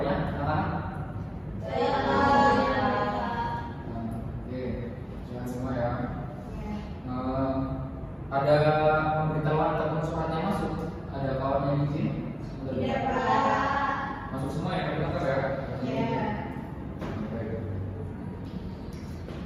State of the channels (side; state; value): both; identical; correlation 1.00